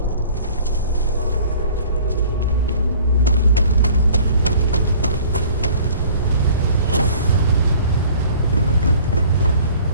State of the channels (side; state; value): both; inverted; correlation -0.50